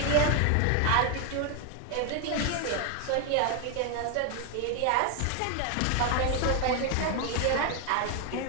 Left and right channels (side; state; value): both; different; correlation 0.01